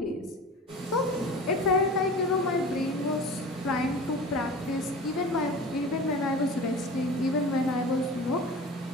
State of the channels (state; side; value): normal; both; correlation 0.36